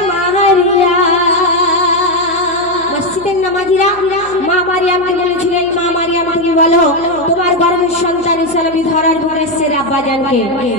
মারিয়াম মসজিদের নামাজিরা মা মারিয়ামকে বলেছিলেন মা মারিয়াম তুমি বলো তোমার গর্ভের সন্তান ঈসা নবী ধরার পর এসেছে আব্বাজানকে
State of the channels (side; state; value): right; noise; hum, 20 dB below the sound